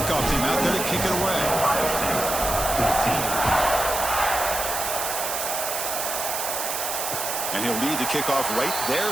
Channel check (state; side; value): noise; right; hiss, 3 dB below the sound